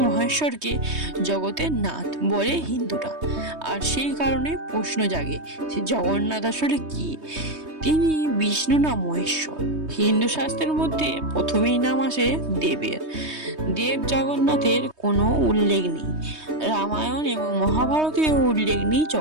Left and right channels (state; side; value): late; left; 3.2 ms